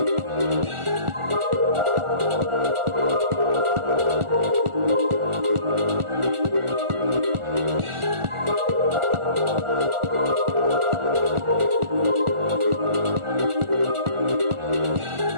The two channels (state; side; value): late; left; 1.4 ms